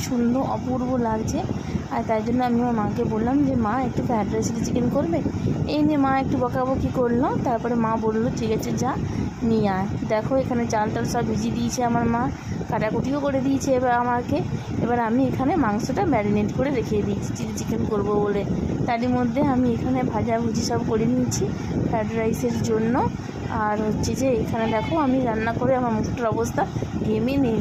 সুন্দর, অপূর্ব লাগছে। আর তাই জন্য আমি আমার মাকে বললাম যে মা একটু ফ্রাইড রাইস চিলি চিকেন করবে। এই নিয়ে মা একটু বকাবকি করলো, তারপরে মা বললো ঠিক আছে যা নিয়ে আয়। দেখো এখানে চাল টাল সব ভিজিয়ে দিয়েছে আমার মা, কাটাকুটিও করে দিয়েছে এবার আমাকে। এবার আমি এখানে মাংসটা ম্যারিনেট করে রেখে দিয়েছি চিলি চিকেন করবো বলে। তারই মধ্যে আমি এখানে ভাজাভুজি সব করে নিয়েছি ফ্রাইড রাইসের জন্য। আর হচ্ছে যে এখানে দেখো আমি রান্না করে আমার মুখটার অবস্থা ঘেমে নিয়ে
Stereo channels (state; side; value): identical; both; correlation 1.00